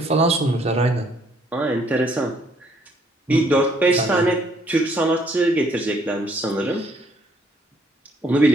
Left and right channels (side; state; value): both; normal; correlation 0.66